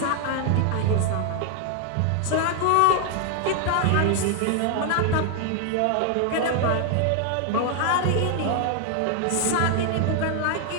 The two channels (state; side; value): different; both; correlation 0.00